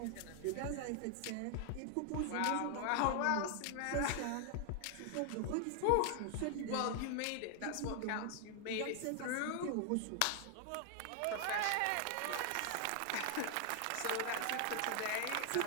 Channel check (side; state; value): both; different; correlation 0.00